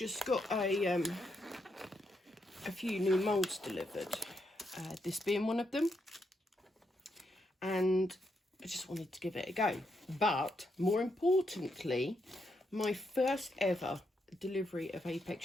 got a few new moulds delivered, this being one of them. And I just wanted to give it a go. But, more importantly, my first ever delivery of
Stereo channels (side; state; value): both; normal; correlation 0.80